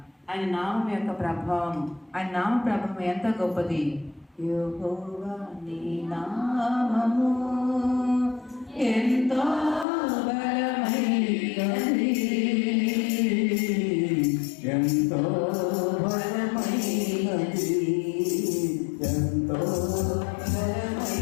ఆయన నామం యొక్క ప్రభావం, ఆయన నామ ప్రభావం ఎంత గొప్పది. యెహోవా నీ నామము ఎంతో బలమైనది, ఎంతో బలమైనది, ఎంతో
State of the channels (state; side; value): drops out; right; at 9.9 s